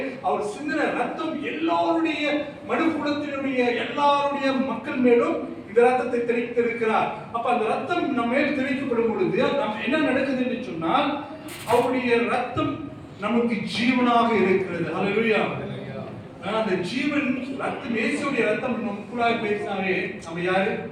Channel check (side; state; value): both; identical; correlation 1.00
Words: அவர் சிந்தின ரத்தம் எல்லாருடைய மனுக்குலத்தினுடைய எல்லாருடைய மக்கள் மேலும் இந்த ரத்தத்தை தெளித்திருக்கிறார். அப்ப அந்த ரத்தம் நம்ம மேல் தெளிக்கப்படும் பொழுது நம்ம என்ன நடக்குது என்று சொன்னால், அவருடைய ரத்தம் நமக்கு ஜீவனாக இருக்கிறது. ஹல்லேலூயா. அந்த ஜீவன் ரத்தம், இயேசுவுடைய ரத்தம் நமக்குள்ளாக பேசினாவே நம்ம யாரு?